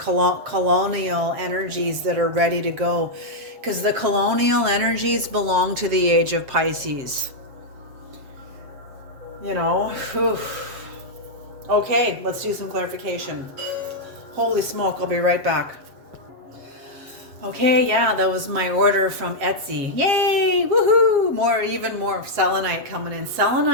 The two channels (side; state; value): left; late; 7.4 ms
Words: energies that are ready to go. Because the colonial energies belong to the age of Pisces. You know, whew. Okay, let's do some clarification. Holy smoke, I'll be right back. Okay, yeah, that was my order from Etsy. Yay! Woohoo! Even more selenite coming in.